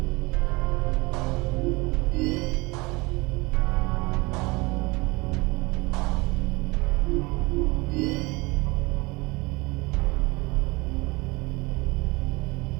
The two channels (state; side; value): quieter; left; 24.5 dB